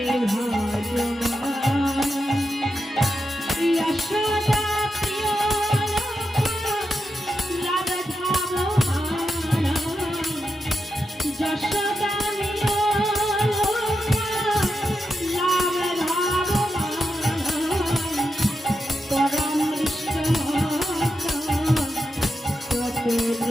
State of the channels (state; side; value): normal; both; correlation 0.87